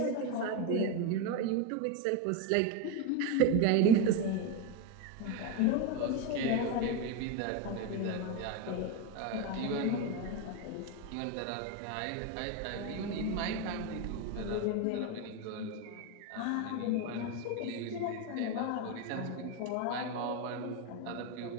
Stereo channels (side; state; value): both; different; correlation 0.03